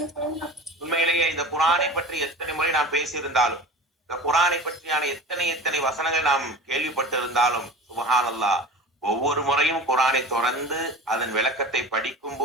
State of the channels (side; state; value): both; normal; correlation 0.36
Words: உண்மையிலேயே இந்த குரானை பற்றி எத்தனை முறை நாம் பேசியிருந்தாலும், இந்த குரானை பற்றியான எத்தனை வசனங்கள் நாம் கேள்விப்பட்டு இருந்தாலும், சுப்ஹானல்லாஹ், ஒவ்வொரு முறையும் குரானை தொடர்ந்து அதன் விளக்கத்தை படிக்கும்